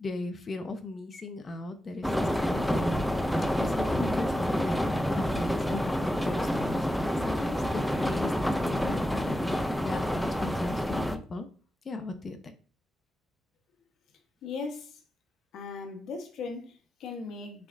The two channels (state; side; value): normal; both; correlation 0.91